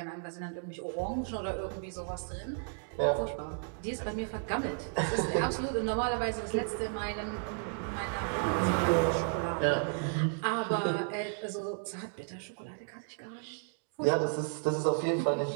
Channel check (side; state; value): left; silent; 56 dB below the other